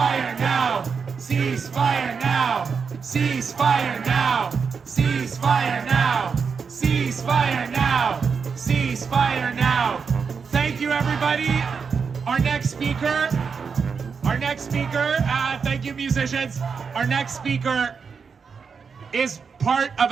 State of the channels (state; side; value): quieter; left; 5.8 dB